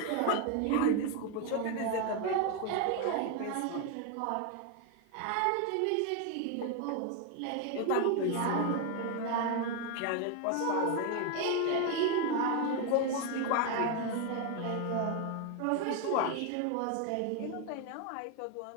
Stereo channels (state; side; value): different; both; correlation 0.01